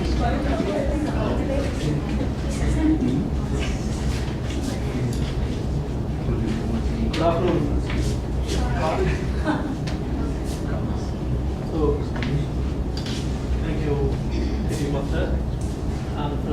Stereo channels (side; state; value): both; identical; correlation 1.00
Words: Good afternoon. So, thank you, City Master, and